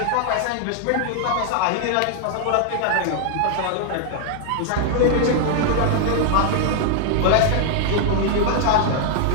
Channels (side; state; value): both; different; correlation 0.00